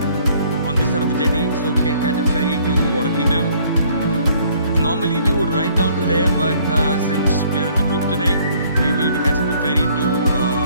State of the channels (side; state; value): both; inverted; correlation -0.61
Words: on this side of the jetty so we can catch a ferry to Water Kingdom. Normally we would ride down to there, but since we are in a group today, we will be catching the ferry